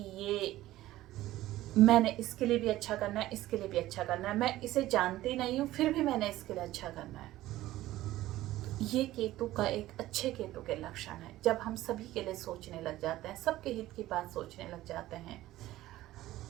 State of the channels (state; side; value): quieter; left; 15.6 dB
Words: ये मैंने इसके लिए भी अच्छा करना है, इसके लिए भी अच्छा करना है, मैं इसे जानती नहीं हूँ फिर भी मैंने इसके लिए अच्छा करना है, ये केतु का एक अच्छे केतु के लक्षण है। जब हम सभी के लिए सोचने लग जाते हैं, सबके हित की बात सोचने लग जाते हैं।